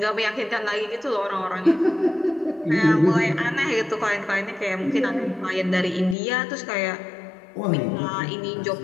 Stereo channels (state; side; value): drops out; right; at 6.2 s